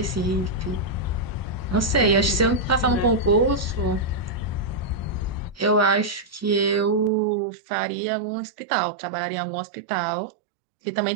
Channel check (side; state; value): left; drops out; at 7.1 s